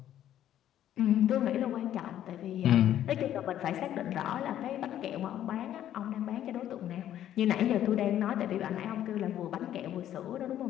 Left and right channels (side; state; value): right; quieter; 11.5 dB